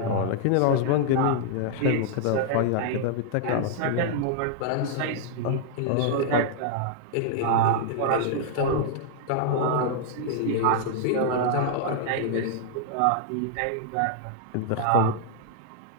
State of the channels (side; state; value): both; different; correlation -0.01